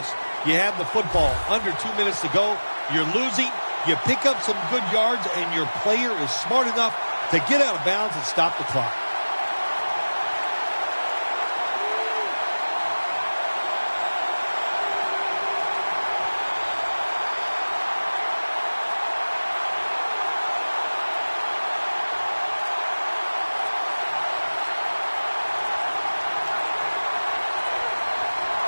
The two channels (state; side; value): inverted; both; correlation -1.00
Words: You have the football under 2 minutes to go. You're losing. You pick up some good yards, and your player is smart enough to get out of bounds and stop the clock.